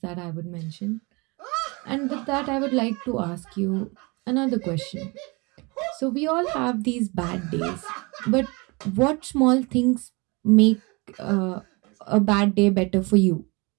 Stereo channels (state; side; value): quieter; left; 27.5 dB